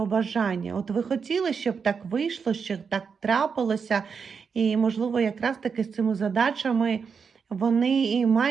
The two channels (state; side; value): quieter; left; 5.9 dB